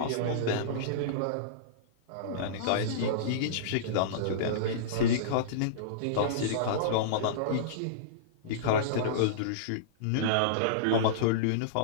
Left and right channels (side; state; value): both; different; correlation -0.04